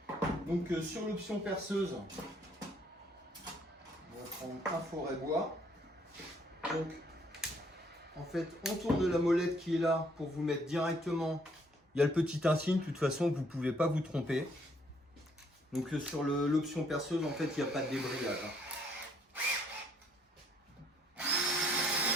Donc sur l'option perceuse, on va prendre un forêt bois. Donc en fait on tourne la molette qui est là pour vous mettre directement. Il y a le petit insigne, de toute façon vous ne pouvez pas vous tromper. Donc sur l'option perceuse en fait il n'y a pas de débrayage.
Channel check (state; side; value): normal; both; correlation 0.66